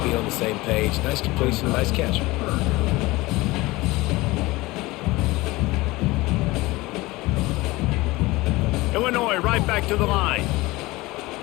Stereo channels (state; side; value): quieter; right; 20.7 dB